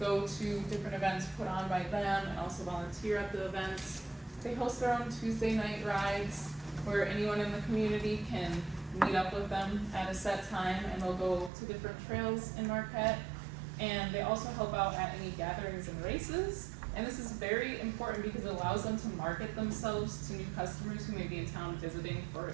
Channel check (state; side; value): drops out; left; at 11.5 s